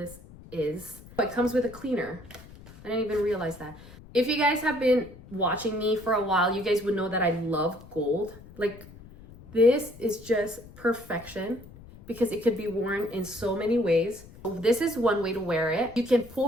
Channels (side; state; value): left; noise; rumble, 19 dB below the sound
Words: is. It comes with a cleaner. I didn't even realize that. If you guys have been watching me for a while, you guys would know that I love gold. Like, this is just perfection because it could be worn in so many ways. This is one way to wear it. You can pull